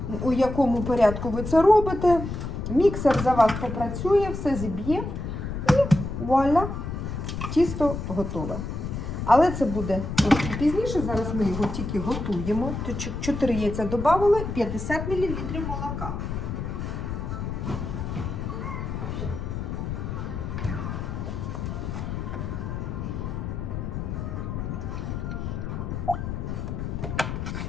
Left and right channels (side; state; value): left; noise; rumble, 5 dB below the sound